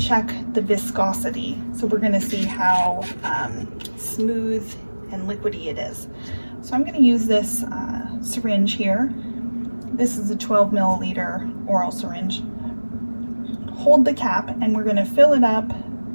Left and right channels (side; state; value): both; inverted; correlation -1.00